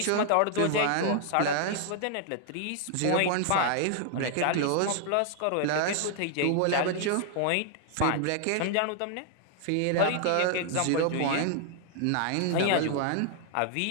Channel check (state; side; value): different; both; correlation 0.00